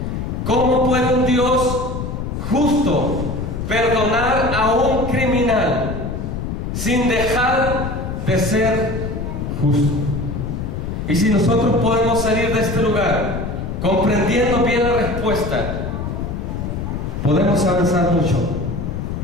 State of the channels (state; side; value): noise; left; rumble, 4 dB below the sound